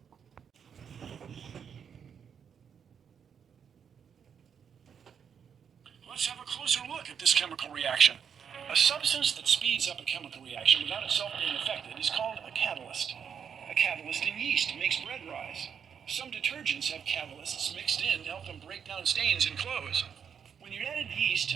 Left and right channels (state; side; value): quieter; left; 7.4 dB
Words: Let's have a closer look at this chemical reaction. A substance that speeds up a chemical reaction without itself being affected is called a catalyst. A catalyst in yeast makes bread rise. Some detergents have catalysts mixed in to help them break down stains in clothes. When you added yeast